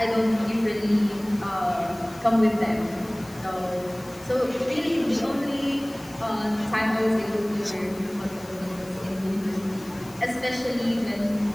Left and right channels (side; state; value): left; noise; hiss, 23 dB below the sound